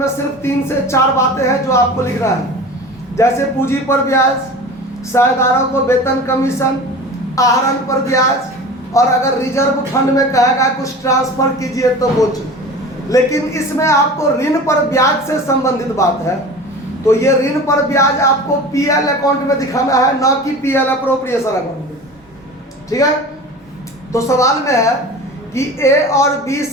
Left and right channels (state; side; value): normal; both; correlation 0.36